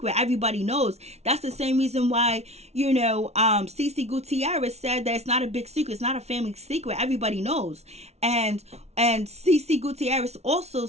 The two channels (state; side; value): late; left; 0.31 ms